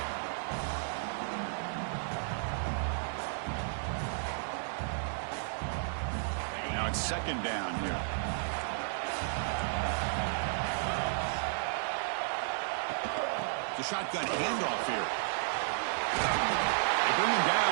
Now it's 2nd down here. The shotgun handoff here. They bring him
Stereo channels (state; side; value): silent; left; digital silence